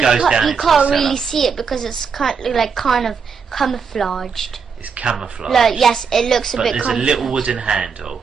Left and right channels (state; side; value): quieter; left; 5.9 dB